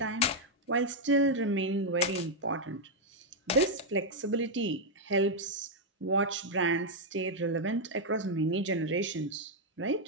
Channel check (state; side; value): normal; both; correlation -0.02